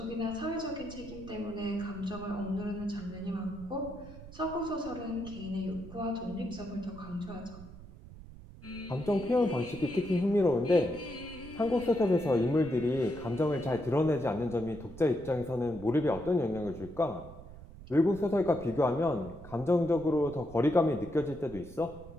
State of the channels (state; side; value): noise; right; rumble, 16 dB below the sound